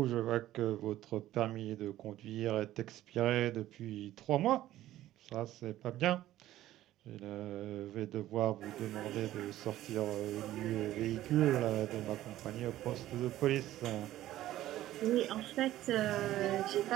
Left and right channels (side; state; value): left; quieter; 14.2 dB